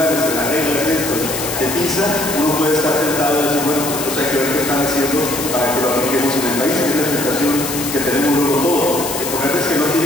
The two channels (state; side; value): noise; left; hiss, 5 dB below the sound